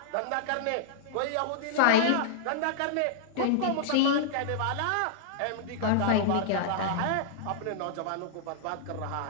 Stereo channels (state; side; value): different; both; correlation -0.01